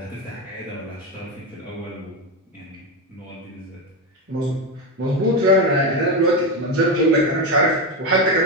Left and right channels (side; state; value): both; normal; correlation 0.13